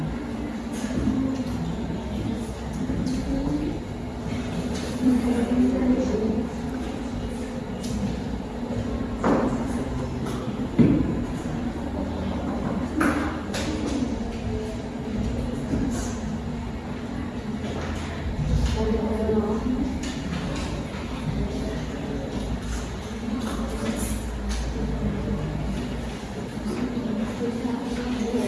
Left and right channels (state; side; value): identical; both; correlation 1.00